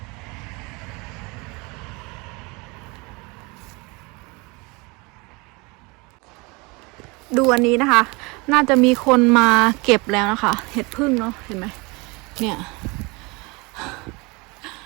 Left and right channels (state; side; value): quieter; left; 26.9 dB